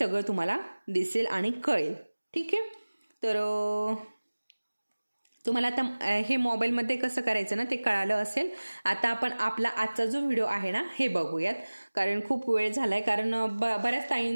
तुम्हाला दिसेल आणि कळेल. ठीक आहे, तर तुम्हाला आता हे मोबाईलमध्ये कसं करायचं ना ते कळालं असेल. आता आपण आपला आजचा जो व्हिडिओ आहे ना हे बघूयात, कारण खूप वेळ झालाय. कारण बऱ्याच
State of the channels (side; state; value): both; inverted; correlation -1.00